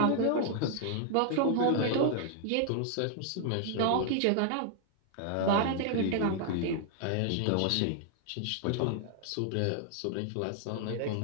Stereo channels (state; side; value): different; both; correlation 0.00